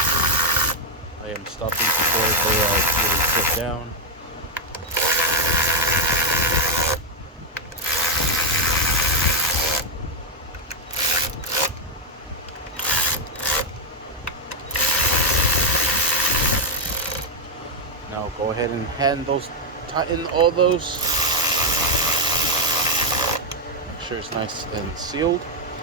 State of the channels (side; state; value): both; normal; correlation 0.00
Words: I am stopping before they really sit down. Now go ahead and tighten all those. Make sure it's nice and sealed.